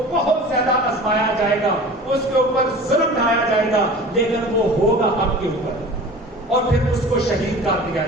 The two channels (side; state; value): both; normal; correlation 0.40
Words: بہت زیادہ آزمایا جائے گا، اس کے اوپر ظلم ڈھایا جائے گا، لیکن وہ ہوگا حق کے اوپر، اور پھر اس کو شہید کر دیا